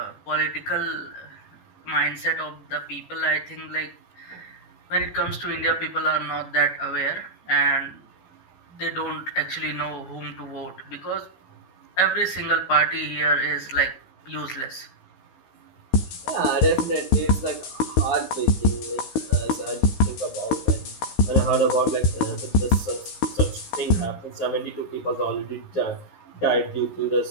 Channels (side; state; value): right; late; 16 ms